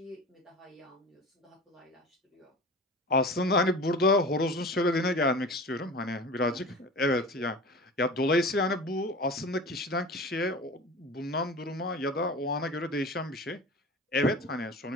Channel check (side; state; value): both; normal; correlation 0.36